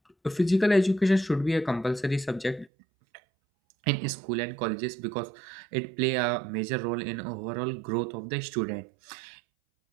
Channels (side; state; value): left; drops out; at 2.7 s